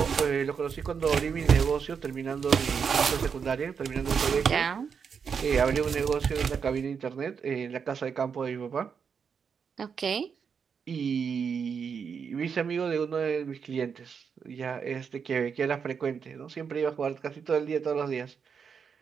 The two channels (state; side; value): quieter; left; 6.5 dB